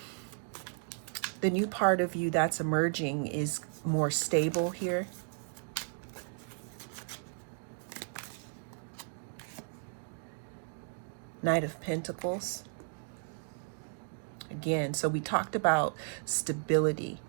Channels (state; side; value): silent; left; 55 dB below the other